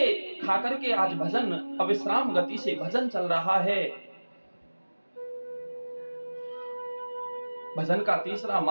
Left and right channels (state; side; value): inverted; both; correlation -1.00